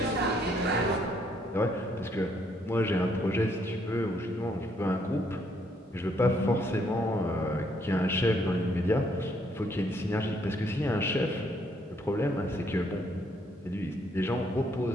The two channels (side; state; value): both; normal; correlation 0.70